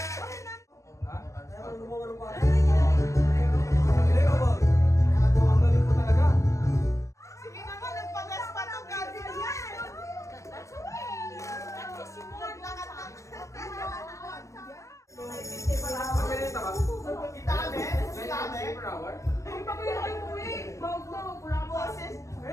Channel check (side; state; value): right; late; 0.15 ms